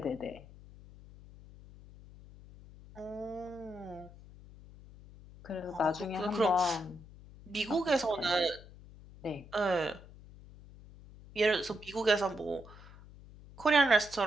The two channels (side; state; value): left; noise; hum, 19 dB below the sound